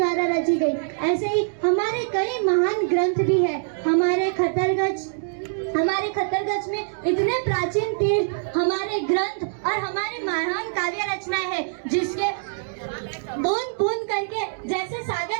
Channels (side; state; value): left; silent; digital silence